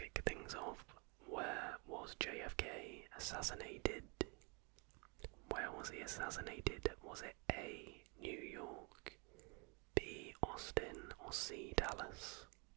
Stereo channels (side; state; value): left; quieter; 32.6 dB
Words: things off. Where was JFK assassinated? Where was he assassinated? Was it A, New York, B, Austin, or C, Dallas?